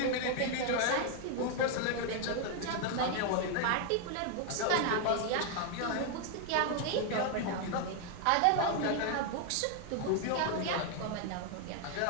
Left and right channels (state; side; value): different; both; correlation 0.00